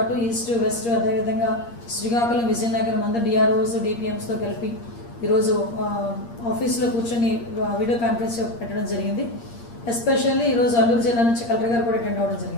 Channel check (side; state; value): right; late; 8.6 ms